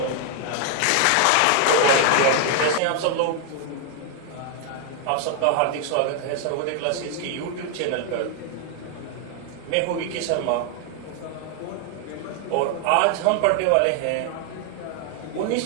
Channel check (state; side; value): different; both; correlation 0.00